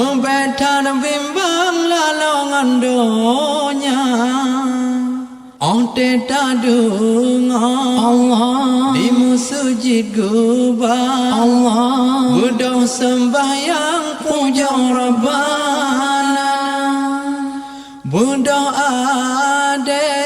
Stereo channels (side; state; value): both; identical; correlation 1.00